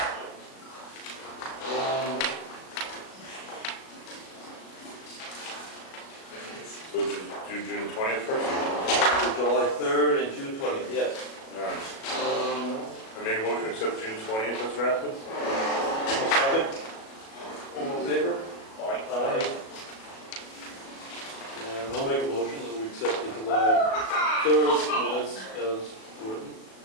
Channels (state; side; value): late; right; 37 ms